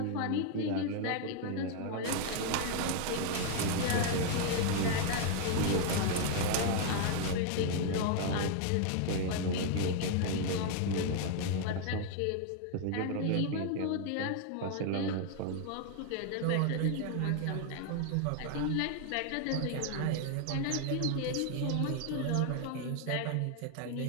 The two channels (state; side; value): different; both; correlation 0.00